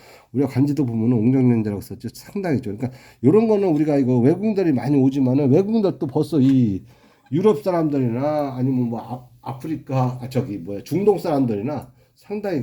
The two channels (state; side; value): identical; both; correlation 1.00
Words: 우리가 관지도 보면은 웅정연대라고 썼죠. 상당히 좋아요. 그러니까 이런 거는 우리가 이거 외국인들이 많이 오지만은 외국인들도 벌써 이 유럽 사람들이나 아니면 뭐 아프리카 저기 뭐야 중동 사람들이나 상당히